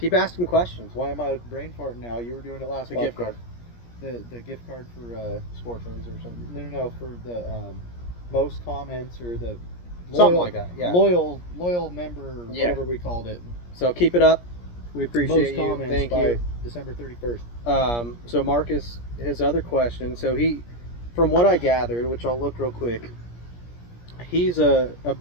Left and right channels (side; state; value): right; late; 17 ms